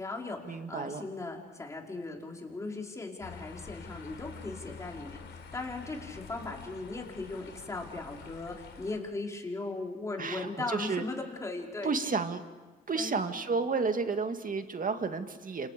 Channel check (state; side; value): normal; both; correlation 0.45